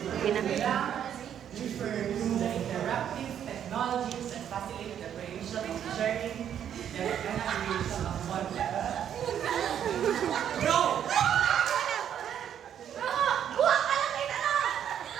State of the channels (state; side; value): quieter; left; 9.4 dB